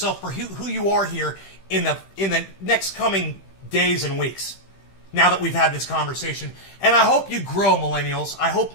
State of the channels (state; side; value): late; right; 15 ms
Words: for who you are here in the next coming days and weeks, now that we've had this conversation. And I hope you grow, millennials. I hope